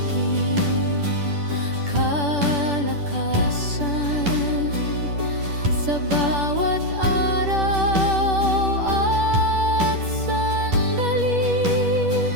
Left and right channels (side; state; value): left; late; 10 ms